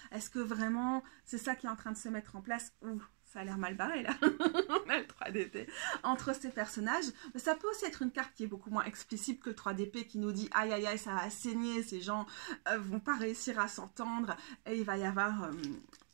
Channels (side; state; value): left; silent; 50 dB below the other